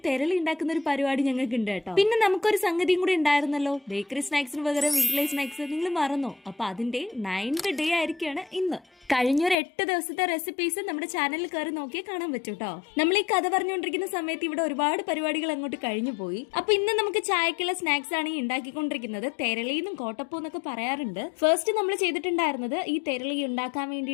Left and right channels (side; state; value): right; drops out; at 9.6 s